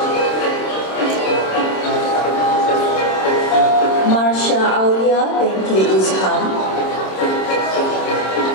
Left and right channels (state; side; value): late; right; 26 ms